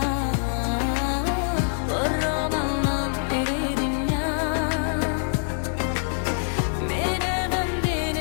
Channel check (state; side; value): silent; right; 60 dB below the other